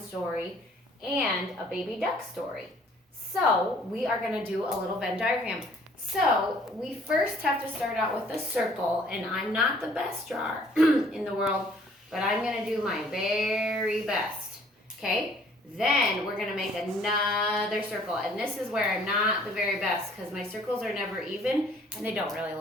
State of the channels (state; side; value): normal; both; correlation 0.58